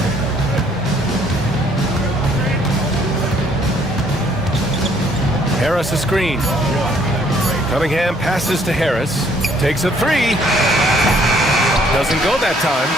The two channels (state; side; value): normal; both; correlation 0.64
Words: Harris a screen. Cunningham passes to Harris. Takes a 3. Doesn't go that time.